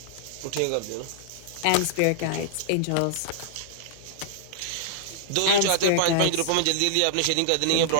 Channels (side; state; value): both; different; correlation -0.01